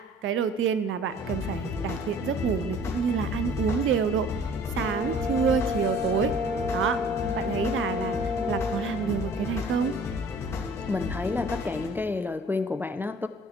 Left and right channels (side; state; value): both; normal; correlation 0.51